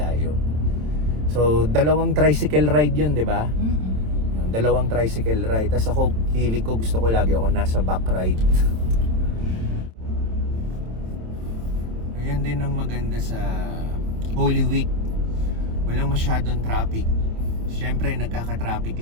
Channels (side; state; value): left; late; 27 ms